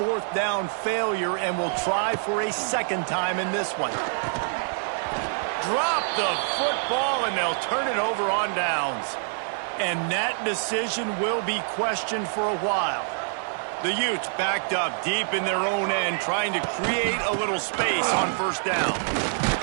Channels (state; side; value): silent; left; digital silence